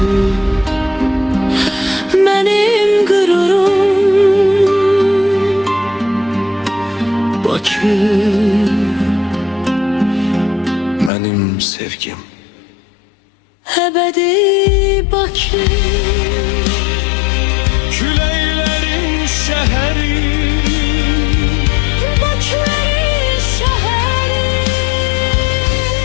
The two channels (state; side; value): drops out; right; at 11.1 s